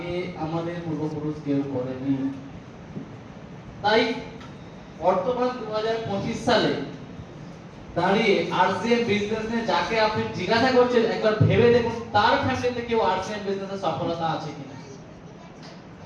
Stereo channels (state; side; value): identical; both; correlation 1.00